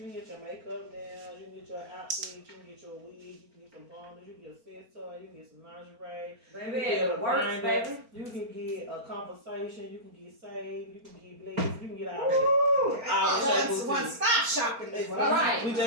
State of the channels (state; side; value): late; left; 4.4 ms